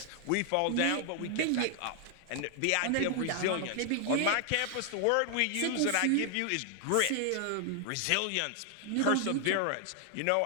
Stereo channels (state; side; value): different; both; correlation 0.00